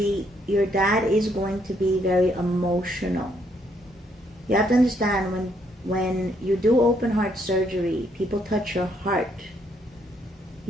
your dad is going to be very emotional. You have to understand, when you do open heart surgery, people touch your heart.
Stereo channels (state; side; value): normal; both; correlation 0.72